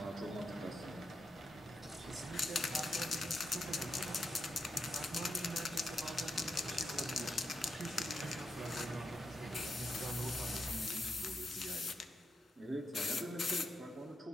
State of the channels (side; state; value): both; normal; correlation 0.84